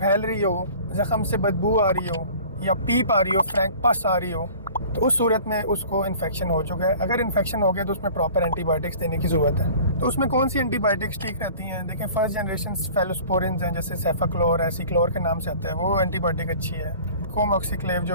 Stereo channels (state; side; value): inverted; both; correlation -0.45